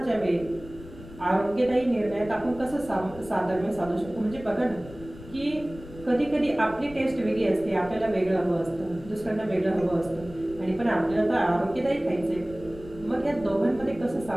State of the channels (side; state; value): left; noise; rumble, 17 dB below the sound